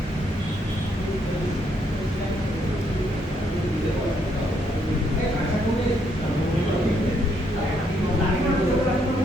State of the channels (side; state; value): both; normal; correlation 0.73